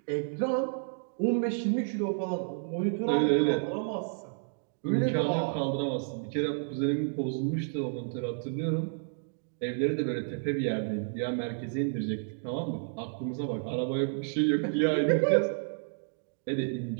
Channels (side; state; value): left; silent; digital silence